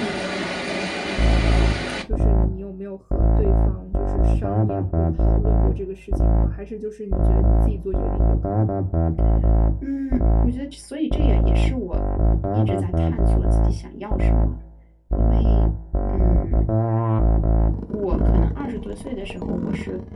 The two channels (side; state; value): both; identical; correlation 1.00